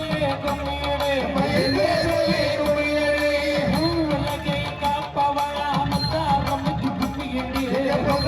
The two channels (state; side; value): identical; both; correlation 1.00